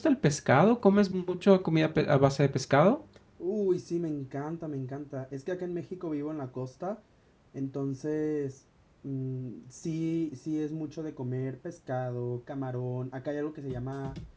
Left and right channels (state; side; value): identical; both; correlation 1.00